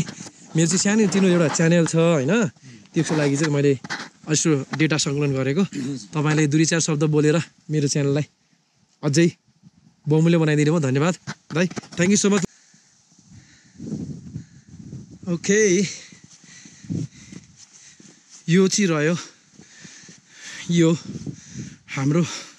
मेरो चाहिँ सानो तिनो एउटा च्यानल छ होइन त्यसको लागि चाहिँ मैले यसो डेटा सङ्कलन गरेको तपाईँले 2-4 शब्द बोलेर मेरो च्यानललाई अझै बहुमूल्य बनाइदिनु भयो धन्यवाद दाइ thank you so much okay यो चाहिँ रह्यो यो हाम्रो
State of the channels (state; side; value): identical; both; correlation 1.00